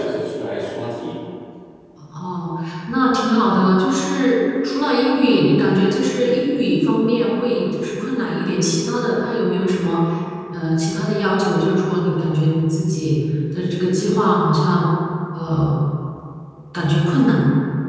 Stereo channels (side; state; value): both; identical; correlation 1.00